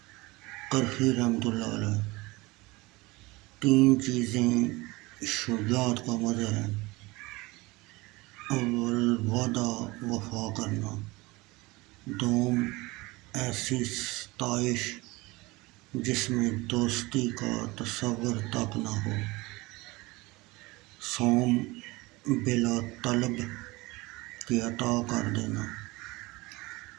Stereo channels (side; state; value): left; quieter; 22.4 dB